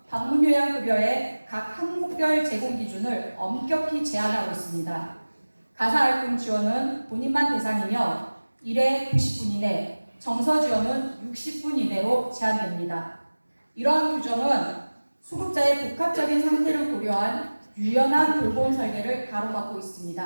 방문요양급여의 각 항목별 제공 기준을 엄격히 제한하고 있습니다. 가사활동 지원은 본인만 대상이며 1회 90분 이내, 정서 지원은 60분 이내로 제한됩니다. 이러한 규정은 수급자의 복합적인 상태를 고려한 유연한 돌봄 설계를 가로막고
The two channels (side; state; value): both; inverted; correlation -1.00